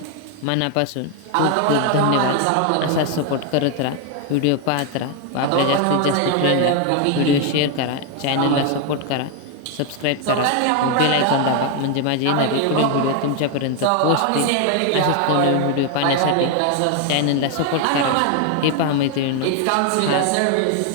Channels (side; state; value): both; different; correlation 0.01